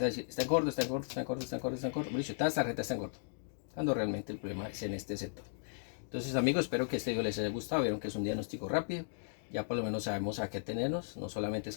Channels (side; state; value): right; silent; digital silence